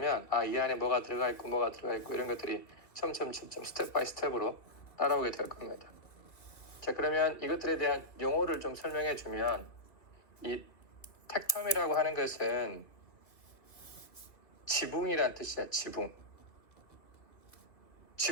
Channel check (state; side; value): late; right; 2.5 ms